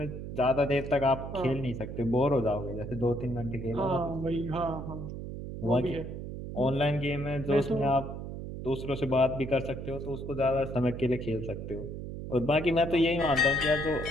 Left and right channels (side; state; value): right; noise; hum, 8 dB below the sound